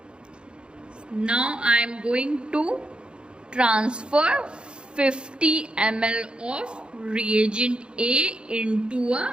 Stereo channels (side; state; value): left; late; 0.053 ms